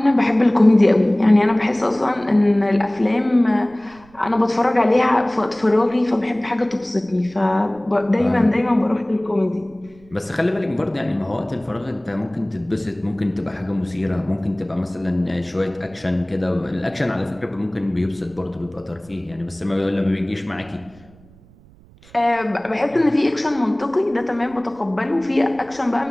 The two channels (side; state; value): right; noise; rumble, 26 dB below the sound